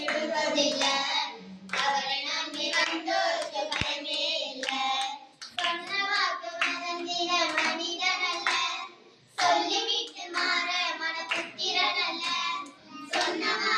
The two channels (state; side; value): identical; both; correlation 1.00